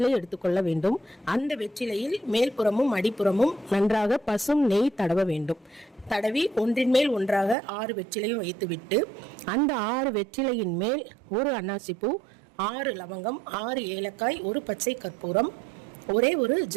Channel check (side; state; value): left; drops out; at 7.6 s